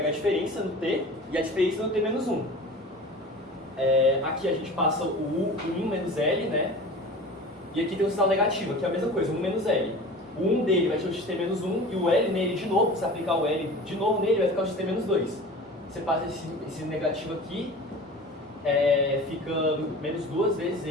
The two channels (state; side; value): normal; both; correlation 0.37